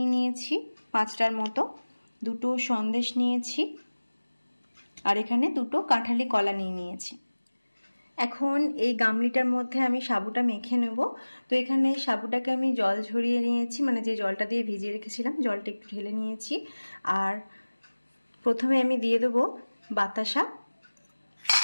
নিয়েছি 5টার মতো। 2টো সন্দেশ নিয়েছি। আর এখানে 2টো কাঁঠালি কলা নিয়েছি। এখন এই গামলিটার মধ্যে আমি সাবুটা মেখে নেব। তো এখানে সাবুটাকে আমি জল ঝরিয়ে নিয়েছি, মানে যে জলটা দিয়ে ভিজিয়ে রেখেছিলাম জলটা একটু ঢেলে নিয়েছি। আর প্রথমে আমি দিয়ে দেবো বাতাসা।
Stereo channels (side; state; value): both; inverted; correlation -1.00